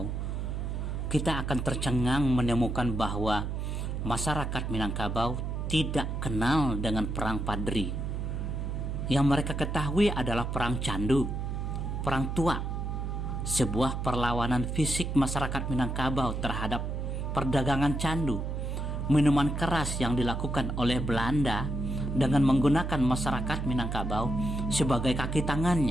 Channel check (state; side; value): noise; right; hum, 3 dB below the sound